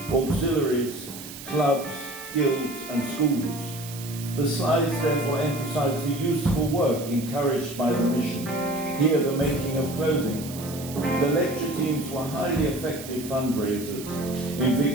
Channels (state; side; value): noise; right; hiss, 13 dB below the sound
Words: auxiliaries, clubs, guilds, and schools. The slides therefore emphasize the useful work encouraged by the mission. Here, the making of clothing. The lecture teams were highly effective fundraisers. In